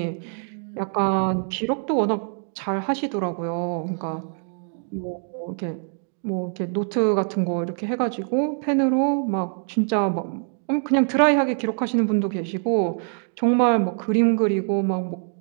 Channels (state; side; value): silent; left; 56 dB below the other